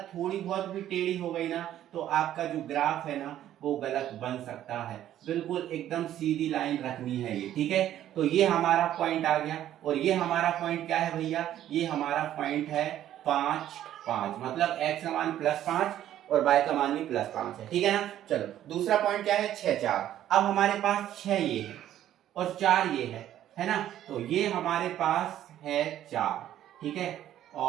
थोड़ी बहुत भी टेढ़ी हो गई ना तो आपका जो ग्राफ है ना वो गलत बन सकता है। बिल्कुल एकदम सीधी लाइन रखनी है ये, ठीक है। तो ये हमारा पॉइंट आ गया, और ये हमारा पॉइंट क्या है भैया, ये हमारा पॉइंट है 5 5, मतलब x का मान +5 और y का मान भी +5 है, ठीक है ना। चलो दूसरा पॉइंट क्या है, 6 4। अब हमारे पास 6 ये है और 4 ये है ना। तो ये हमारे पास है 4, ठीक है,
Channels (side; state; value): left; quieter; 11.9 dB